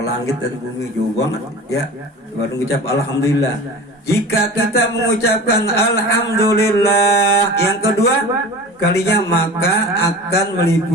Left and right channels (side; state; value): both; normal; correlation 0.37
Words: langit dan bumi jauh banget ya, baru mengucap alhamdulillah. Jika kita mengucapkan alhamdulillah yang kedua kalinya, maka akan